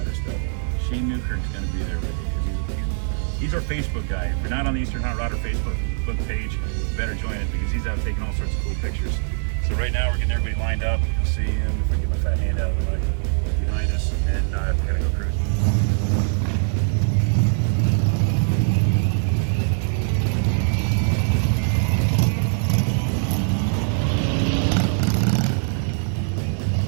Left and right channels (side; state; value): left; silent; digital silence